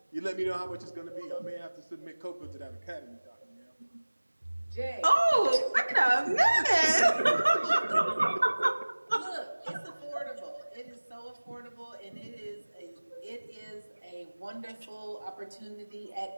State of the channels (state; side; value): inverted; both; correlation -1.00